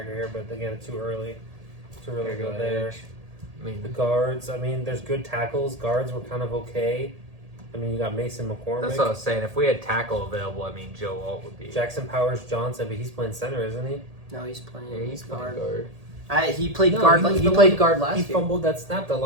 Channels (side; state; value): left; late; 1.8 ms